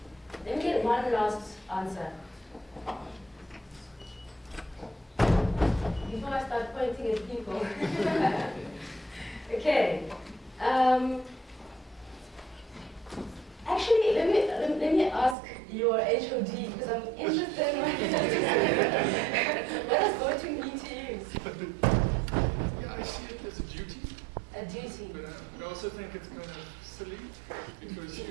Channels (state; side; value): drops out; left; at 15.4 s